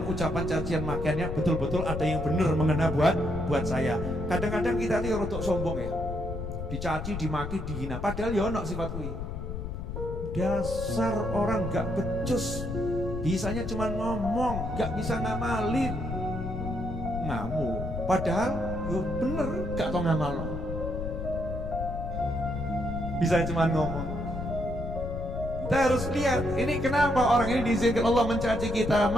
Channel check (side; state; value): left; noise; rumble, 6 dB below the sound